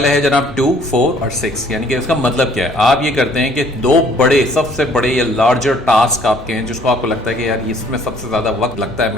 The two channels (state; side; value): normal; both; correlation 0.58